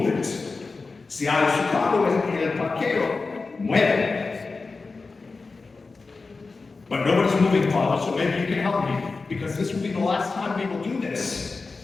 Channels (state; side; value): quieter; right; 4.0 dB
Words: it. Si hay su carro en el parqueo, muere. But nobody's moving, Father, so maybe you can help me, because this will be the last time we will do this.